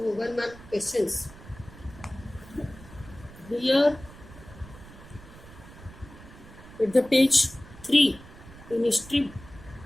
mark questions. Here at the page 3 in history,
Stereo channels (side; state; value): right; noise; rumble, 18 dB below the sound